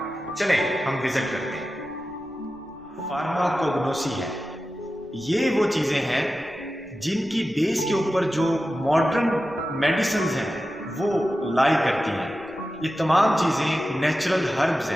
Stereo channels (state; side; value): noise; right; rumble, 28 dB below the sound